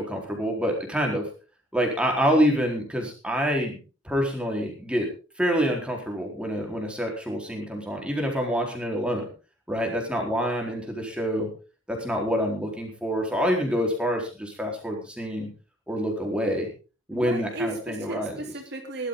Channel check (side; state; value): both; normal; correlation 0.62